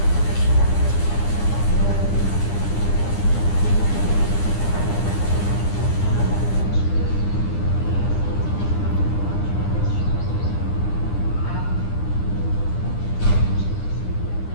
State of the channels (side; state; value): right; late; 9.8 ms